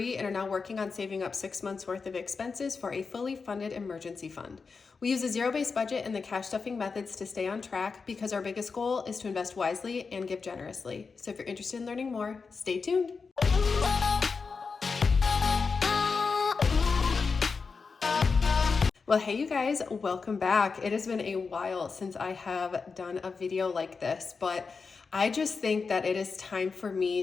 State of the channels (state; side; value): quieter; right; 4.9 dB